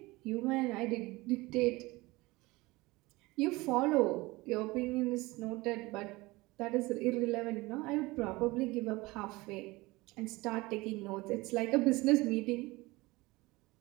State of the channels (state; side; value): quieter; left; 21.7 dB